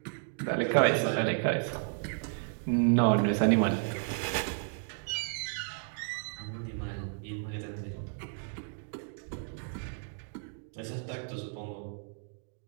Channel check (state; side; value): silent; left; 56 dB below the other